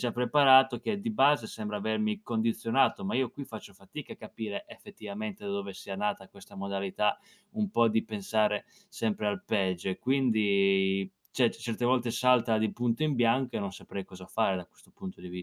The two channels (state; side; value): identical; both; correlation 1.00